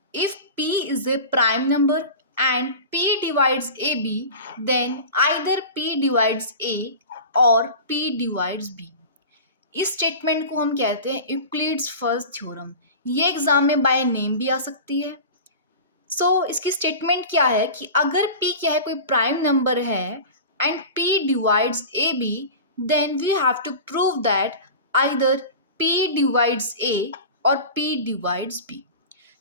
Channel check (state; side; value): inverted; both; correlation -0.33